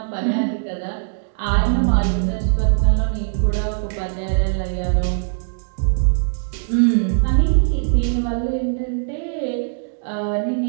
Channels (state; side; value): silent; left; digital silence